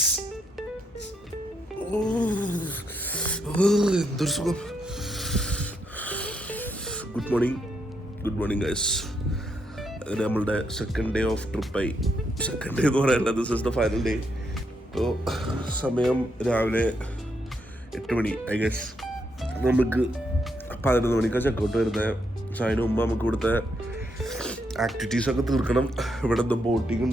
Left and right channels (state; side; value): normal; both; correlation 0.78